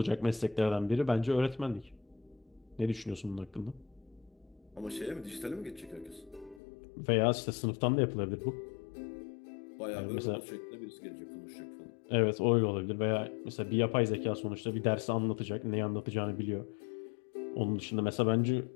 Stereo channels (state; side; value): drops out; right; at 6.6 s